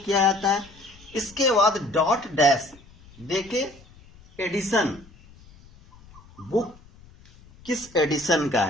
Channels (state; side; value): noise; left; rumble, 25 dB below the sound